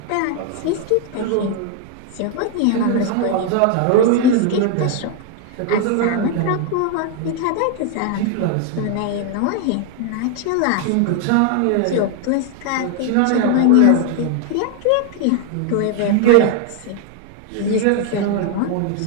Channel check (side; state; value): both; different; correlation 0.00